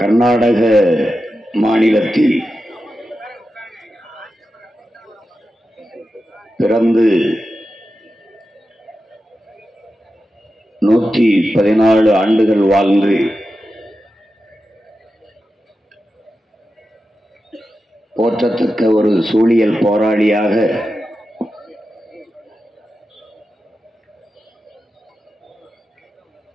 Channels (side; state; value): both; normal; correlation 0.91